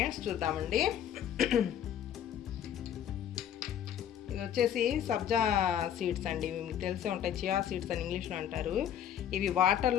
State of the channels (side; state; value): right; quieter; 9.8 dB